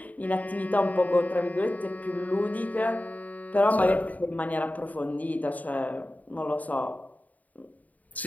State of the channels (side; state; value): right; late; 0.074 ms